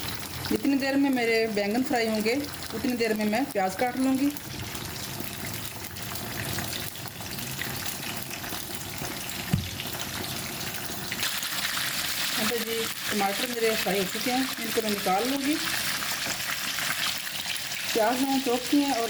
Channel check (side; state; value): both; identical; correlation 1.00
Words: जितनी देर में मेरे बैंगन फ्राई होंगे उतनी देर में मैं प्याज काट लूँगी। यहाँ पे जी टमाटर मेरे फ्राई हो चुके हैं, इनको मैं निकाल लूँगी। प्याज मैंने चॉप किए हैं और